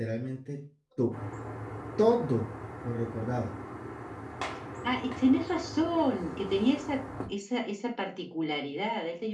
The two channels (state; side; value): identical; both; correlation 1.00